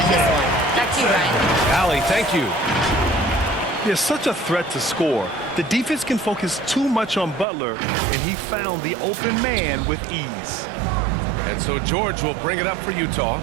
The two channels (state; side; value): drops out; left; at 7.5 s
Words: this one. Back to you, Ryan. Allie, thank you. He is such a threat to score. The defense can focus too much on Butler, and he found the open man with ease. And so George will bring it up for Utah.